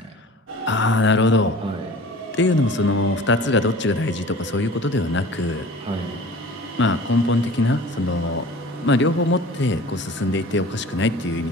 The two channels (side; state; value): both; normal; correlation 0.43